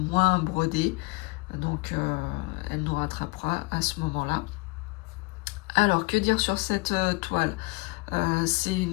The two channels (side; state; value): right; quieter; 24.8 dB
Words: broder, donc elle nous rattrapera à ce moment-là. Alors, que dire sur cette toile? C'est